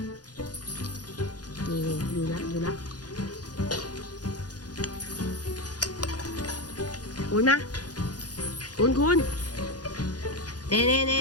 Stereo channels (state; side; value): late; right; 0.69 ms